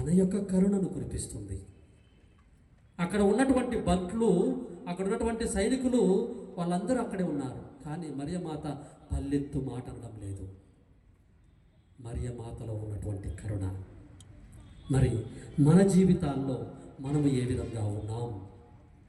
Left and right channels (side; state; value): both; identical; correlation 1.00